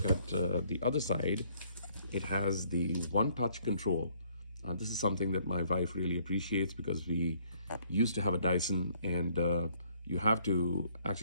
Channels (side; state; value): both; inverted; correlation -0.63